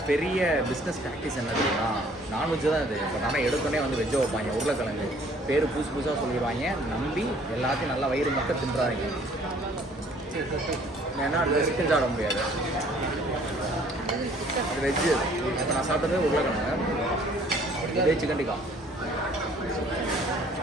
பெரிய பிஸ்னஸ் ப்ராக்டிஸ் என்ன தெரியுமா? நான்வெஜ் தான் இது. பட் ஆனால் எடுத்தோடனே வந்து வெஜ்ஜை வைப்பாங்க. உருளைக்கிழங்கு பேர் புதுசாக சொல்லிடுவாங்க. நம்பி எல்லாத்தையும் நல்லா வயிறு மட்டும் தின்றாங்க. ஏன்னா அது சிக்கன் சாப்பிட முடியாது. அது வெஜ்ஜு. இப்போ நான் சாப்பிட்டது உருளைக்கிழங்கு, இதே சிக்கன் டிக்கா.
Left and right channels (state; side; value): normal; both; correlation 0.57